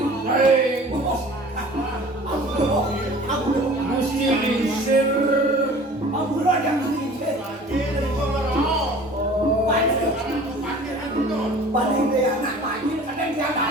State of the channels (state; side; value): normal; both; correlation 0.45